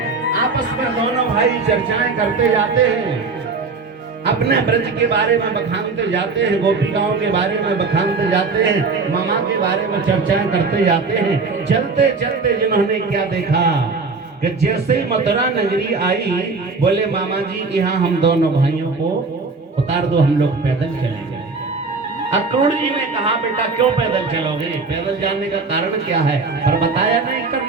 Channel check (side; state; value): left; quieter; 4.2 dB